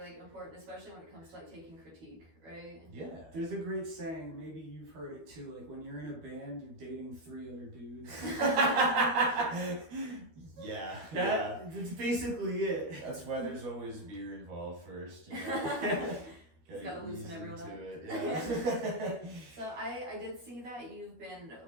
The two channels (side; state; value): left; late; 13 ms